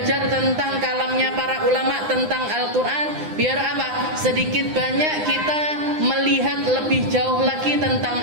tentang kalamnya para ulama tentang Al-Qur'an, biar apa? Sedikit banyak kita melihat lebih jauh lagi tentang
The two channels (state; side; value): late; left; 9.8 ms